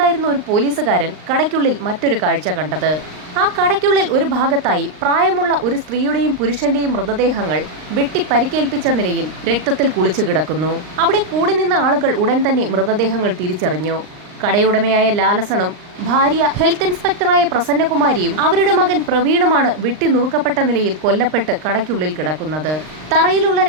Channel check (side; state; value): left; late; 39 ms